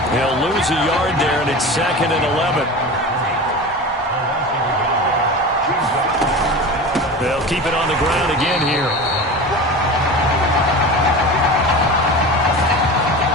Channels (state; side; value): normal; both; correlation 0.31